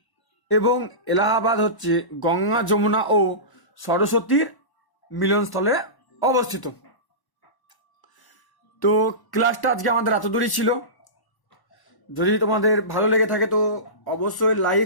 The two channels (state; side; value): late; right; 1.0 ms